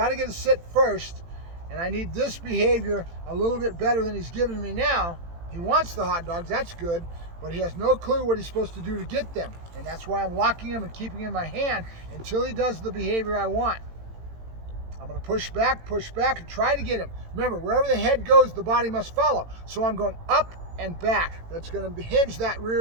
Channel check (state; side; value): late; left; 18 ms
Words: to get a sit first, and I need this behavior a little bit better than he's giving me now. He wants the hot dogs. That's good, but he has no clue what he's supposed to do to get them, and that's why I'm locking him and keeping him in my hand until he does the behavior I want. I'm going to push back, and try to get him. Remember, wherever the head goes, the body must follow. So I'm going up and back. That's going to hinge that